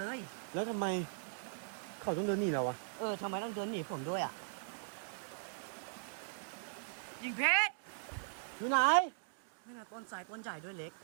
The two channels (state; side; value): silent; left; digital silence